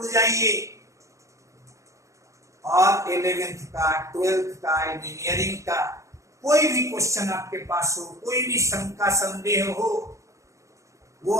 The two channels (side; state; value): left; late; 0.15 ms